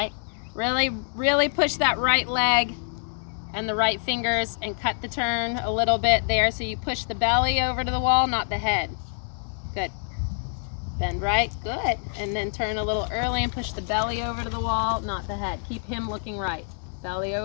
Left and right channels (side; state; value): right; silent; digital silence